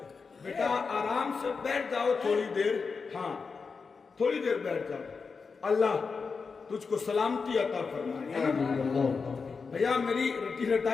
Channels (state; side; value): quieter; right; 5.0 dB